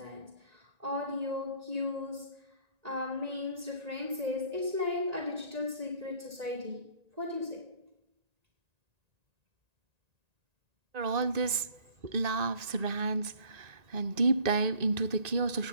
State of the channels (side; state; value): left; late; 1.8 ms